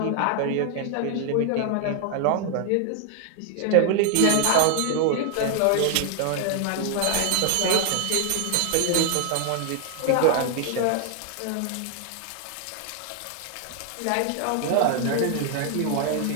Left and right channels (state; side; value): different; both; correlation 0.00